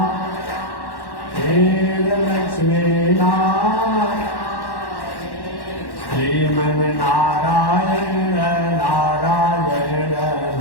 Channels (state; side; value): late; right; 1.1 ms